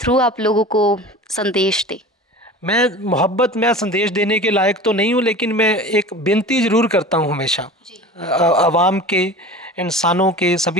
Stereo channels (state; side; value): normal; both; correlation 0.36